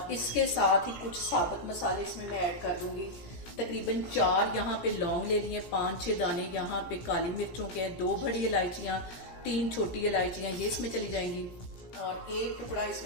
इसके साथ ही कुछ साबुत मसाले इसमें मैं ऐड कर दूंगी। तकरीबन 4 यहाँ पे लौंग ले लिए, 5-6 दाने यहाँ पे काली मिर्चों के हैं, 2 बड़ी इलायचियाँ, 3 छोटी इलायचियाँ ये इसमें चली जाएंगी। और 1 टुकड़ा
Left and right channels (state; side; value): late; right; 17 ms